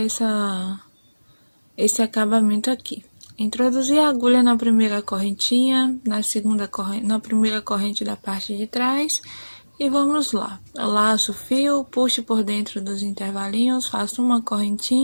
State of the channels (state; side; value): inverted; both; correlation -1.00